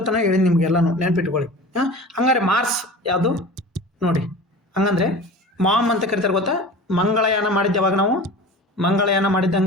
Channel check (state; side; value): normal; both; correlation 0.37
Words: ಹೇಳಿ ನಿಮ್ಗೆಲ್ಲನೂ ನೆನ್ಪಿಟ್ಕೊಳ್ಳಿ. ಹಂಗಾರೆ ಮಾರ್ಸ್ ಯಾವುದು ನೋಡಿ. ಹಂಗಂದ್ರೆ ಮಾಮ್ ಅಂತ ಕರಿತಾರೆ ಗೊತ್ತಾ? ಮಂಗಳಯಾನ ಮಾಡಿದ್ದೆ ಯಾವಾಗ ನಾವು? ಮಂಗಳಯಾನ